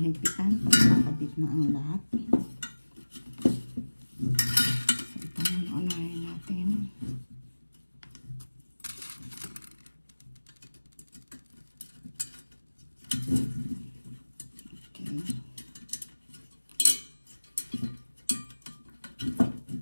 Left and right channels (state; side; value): inverted; both; correlation -1.00